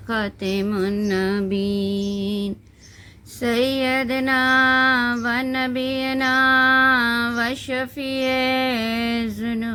النبیین سیدنا و نبینا و شفیع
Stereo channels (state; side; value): identical; both; correlation 1.00